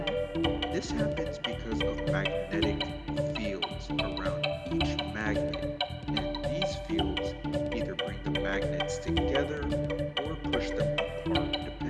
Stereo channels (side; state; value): both; identical; correlation 1.00